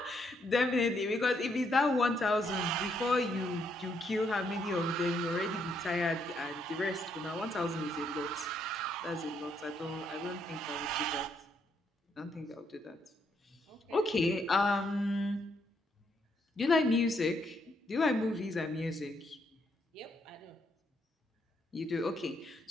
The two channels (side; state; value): both; normal; correlation 0.74